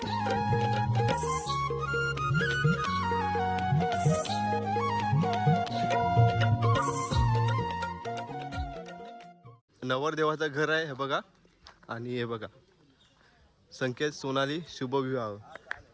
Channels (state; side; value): identical; both; correlation 1.00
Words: नवरदेवाचं घर आहे हे बघा. आणि हे बघा संकेत सोनाली शुभविवाह.